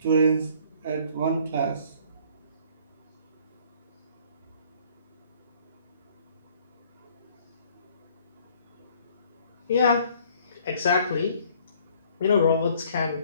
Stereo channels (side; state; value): both; inverted; correlation -0.58